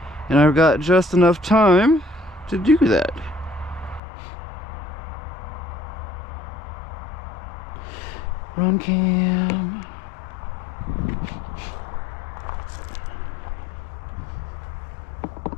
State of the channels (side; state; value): right; drops out; at 4.0 s